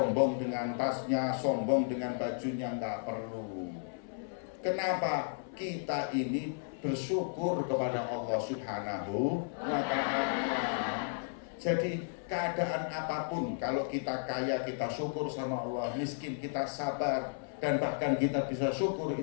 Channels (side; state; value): right; silent; 55 dB below the other